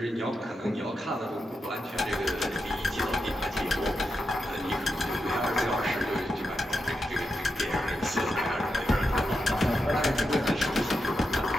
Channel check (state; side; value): normal; both; correlation 0.87